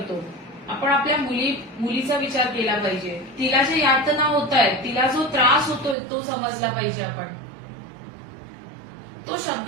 आपण आपल्या मुलीचा विचार केला पाहिजे. तिला जे यातना होत आहेत, तिला जो त्रास होतोय तो समजला पाहिजे. आपण तो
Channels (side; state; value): left; drops out; at 6.0 s